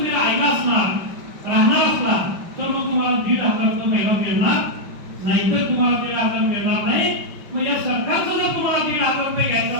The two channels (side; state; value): left; late; 5.4 ms